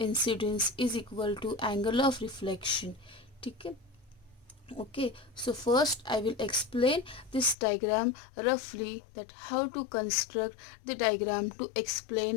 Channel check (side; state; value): right; drops out; at 7.6 s